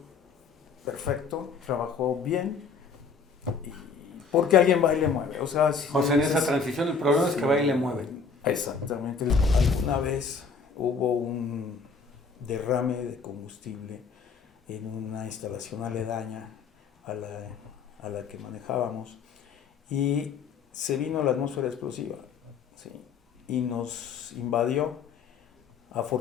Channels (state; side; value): quieter; right; 5.2 dB